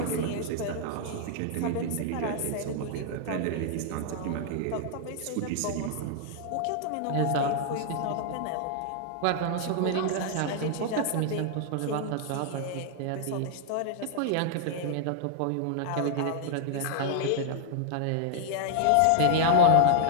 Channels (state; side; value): different; both; correlation -0.01